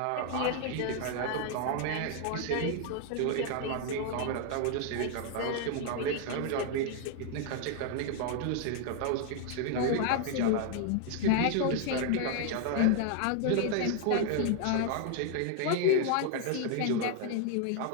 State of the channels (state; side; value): different; both; correlation 0.00